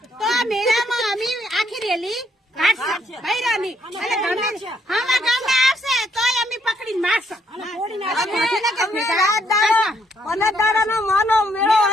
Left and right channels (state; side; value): normal; both; correlation 0.71